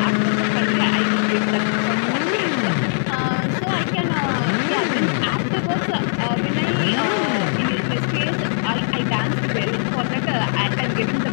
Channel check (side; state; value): right; silent; 62 dB below the other